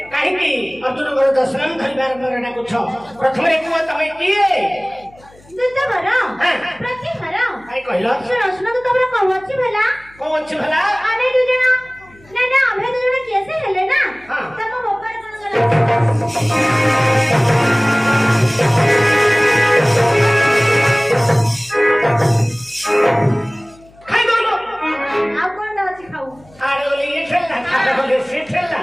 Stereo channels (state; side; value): noise; left; hum, 27 dB below the sound